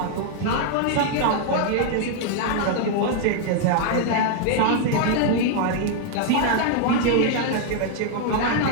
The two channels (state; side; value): different; both; correlation 0.00